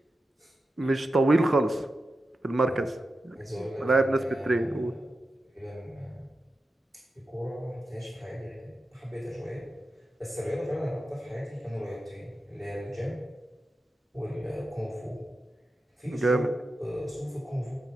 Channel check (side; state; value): both; normal; correlation 0.91